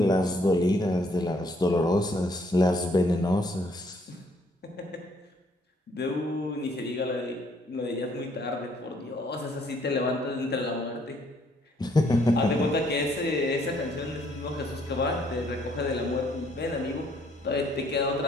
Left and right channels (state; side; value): normal; both; correlation 0.66